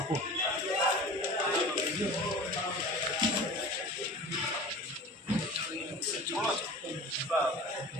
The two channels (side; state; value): both; normal; correlation 0.38